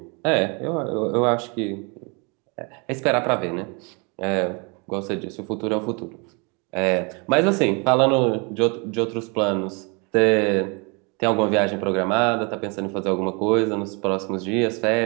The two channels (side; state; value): left; quieter; 31.8 dB